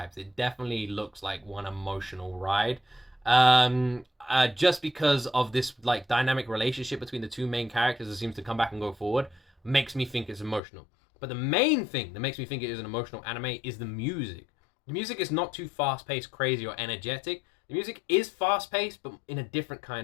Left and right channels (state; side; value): drops out; right; at 10.6 s